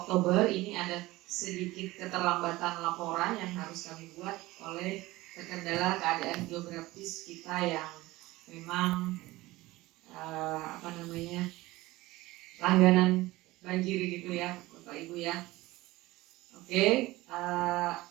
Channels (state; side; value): quieter; left; 19.1 dB